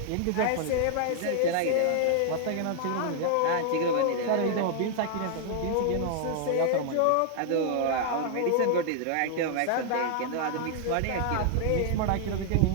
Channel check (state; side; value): different; both; correlation 0.00